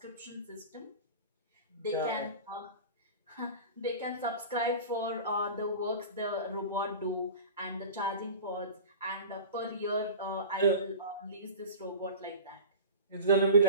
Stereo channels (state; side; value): inverted; both; correlation -0.35